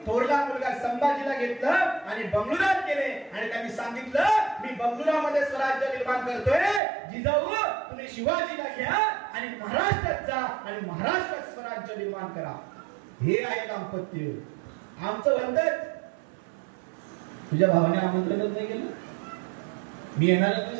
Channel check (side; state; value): left; drops out; at 6.8 s